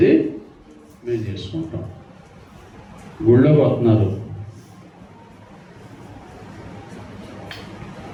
మేము చేసుకుంటాం. గుళ్ళోకి వస్తున్నారు,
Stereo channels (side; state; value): both; identical; correlation 1.00